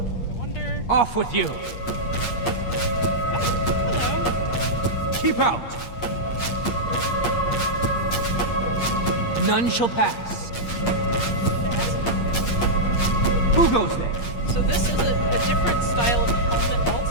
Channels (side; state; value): right; late; 8.5 ms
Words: wonder... Off with you! Hello. Keep out! None shall pass. Who goes there? So this is a different style of helmet